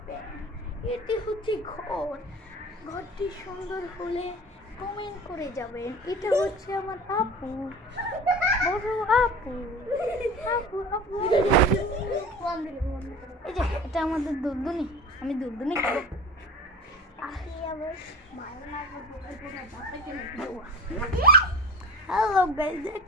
প্যান। এটি হচ্ছে ঘরটি সুন্দর হলে কমেন্ট করে যাবেন। এটা হচ্ছে আমার আপু, বড় আপু। এই যে এটা আমাদের দুলদুনি। আমি দুলদুনি খাবো। হ্যালো গাইস,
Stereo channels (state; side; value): normal; both; correlation 0.36